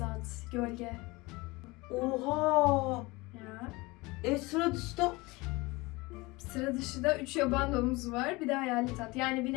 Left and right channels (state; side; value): quieter; right; 23.2 dB